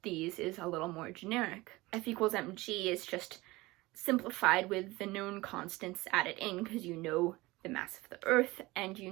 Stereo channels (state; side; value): quieter; left; 20.8 dB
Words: these is a little more generic. F equals mg is just simplified with the known constants added in, because you know the mass of the Earth and you